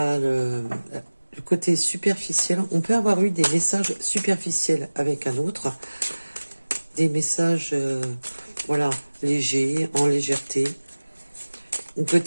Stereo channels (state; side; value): inverted; both; correlation -1.00